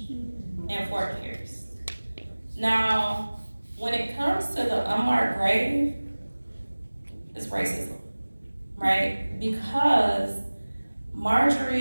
in Fort Pierce. Now, when it comes to the unmarked grave, it's racism, right? Because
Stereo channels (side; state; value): both; inverted; correlation -1.00